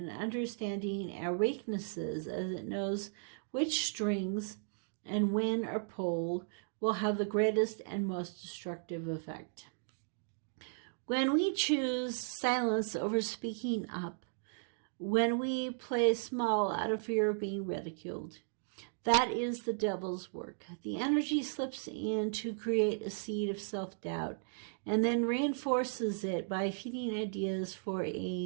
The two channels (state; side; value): silent; left; digital silence